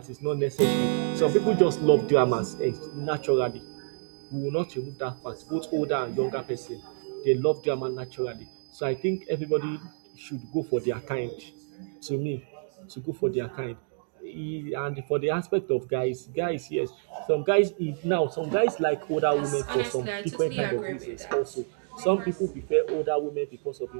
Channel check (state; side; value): silent; left; digital silence